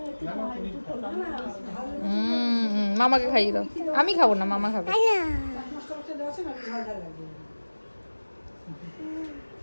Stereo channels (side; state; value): both; inverted; correlation -1.00